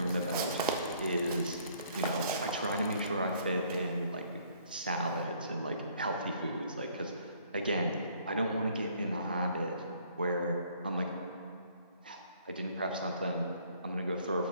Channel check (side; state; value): both; inverted; correlation -0.61